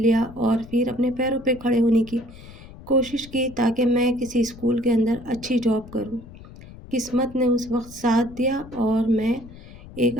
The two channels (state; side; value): noise; left; rumble, 18 dB below the sound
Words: اور پھر اپنے پیروں پہ کھڑے ہونے کی کوشش کی تاکہ میں کسی اسکول کے اندر اچھی جاب کروں۔ قسمت نے اس وقت ساتھ دیا اور میں ایک